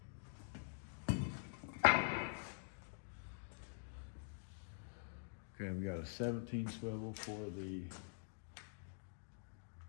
Okay, we got a 17 swivel for the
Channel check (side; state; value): right; silent; digital silence